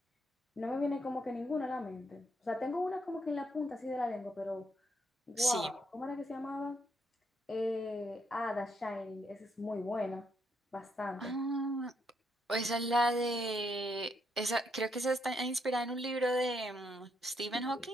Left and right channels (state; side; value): normal; both; correlation 0.76